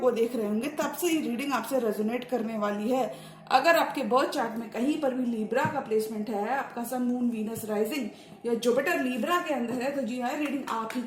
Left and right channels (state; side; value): identical; both; correlation 1.00